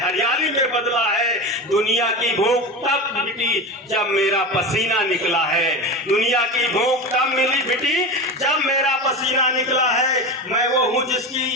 हरियाली में बदला है। दुनिया की भूख तब मिटी जब मेरा पसीना निकला है। दुनिया की भूख तब मिली मिटी जब मेरा पसीना निकला है। मैं वो हूँ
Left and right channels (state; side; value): normal; both; correlation 0.25